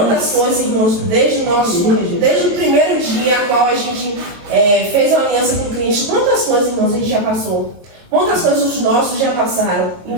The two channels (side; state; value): left; late; 22 ms